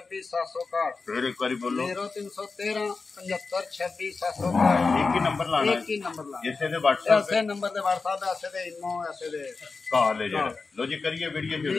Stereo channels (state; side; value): quieter; right; 4.3 dB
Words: 761 फिर एक बार बोलो 0313 75 26 761 एक ही नंबर लाना है, एक ही नंबर लाना इसे दे WhatsApp ऐसे नंबर ते WhatsApp ऐसे दे इनो ऐसे दे कॉल है जेड़ा। लो जी करिए वीडियो